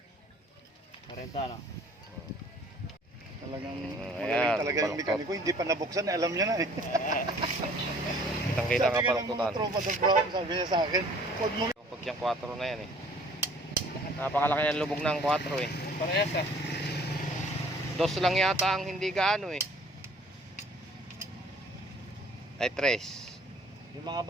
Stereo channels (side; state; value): both; normal; correlation 0.54